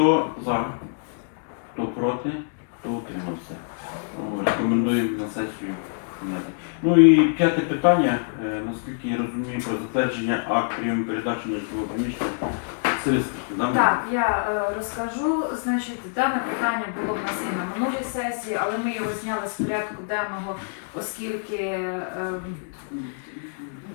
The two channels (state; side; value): silent; right; digital silence